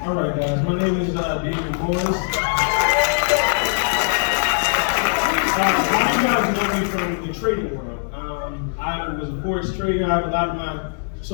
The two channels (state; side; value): silent; right; digital silence